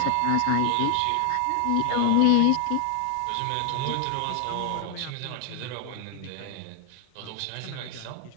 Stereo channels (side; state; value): both; different; correlation 0.00